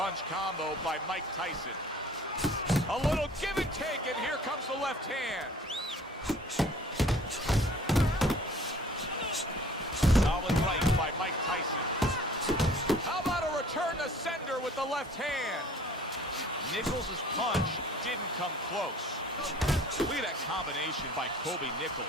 combo by Mike Tyson. A little give and take, and here comes the left hand. Solid right by Mike Tyson. How about a return to sender with the left hand? Nichols' punch didn't come close. Look at that combination by Kobe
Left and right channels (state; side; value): normal; both; correlation 0.51